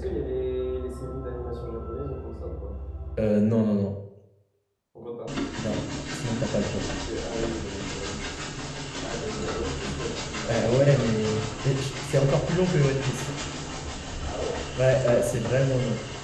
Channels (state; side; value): identical; both; correlation 1.00